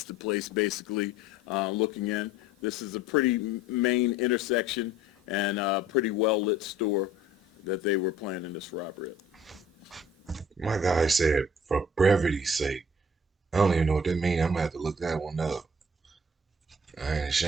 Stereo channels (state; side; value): normal; both; correlation 0.52